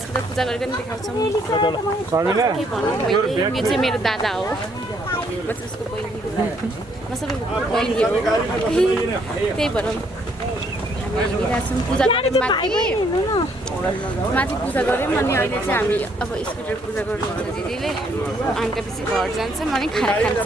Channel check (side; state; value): both; normal; correlation 0.68